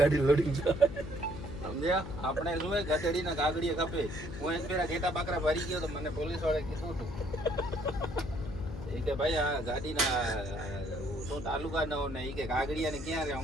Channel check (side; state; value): left; noise; hum, 9 dB below the sound